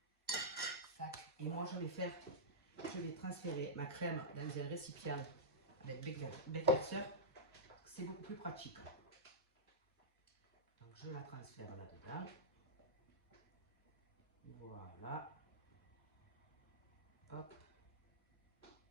Et moi, je vais transférer ma crème dans un récipient avec Beckwerzer. C'est beaucoup plus pratique. Donc, je la transfère là-dedans. Voilà. Hop.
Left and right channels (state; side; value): normal; both; correlation -0.12